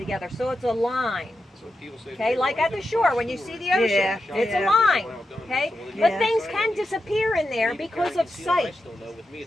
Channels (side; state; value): both; normal; correlation 0.88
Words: so it's a line. Okay, like at the shore when you see the ocean, it's a line. Okay, but things can disappear in there because of sight.